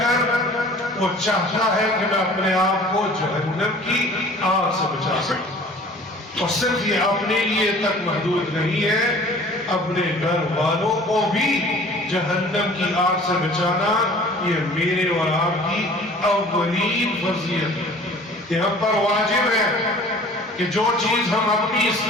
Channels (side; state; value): both; normal; correlation 0.48